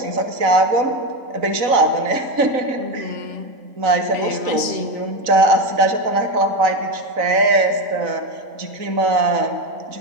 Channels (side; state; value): left; late; 4.0 ms